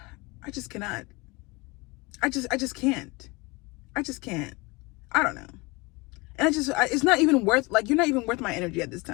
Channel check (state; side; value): quieter; right; 25.4 dB